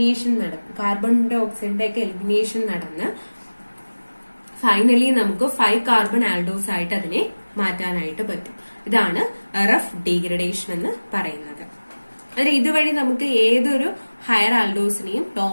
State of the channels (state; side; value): inverted; both; correlation -1.00